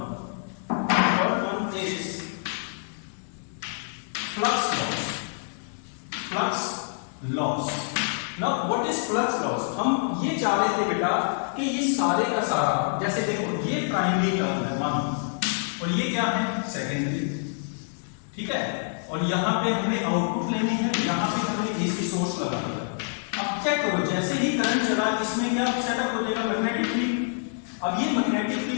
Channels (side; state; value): right; silent; digital silence